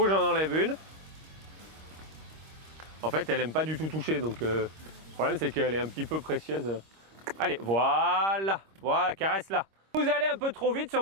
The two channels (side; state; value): left; late; 26 ms